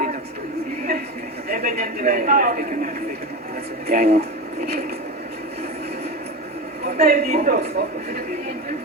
Eben yan tira yun. Yan yun. Huwag tayo dito.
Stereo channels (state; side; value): normal; both; correlation 0.22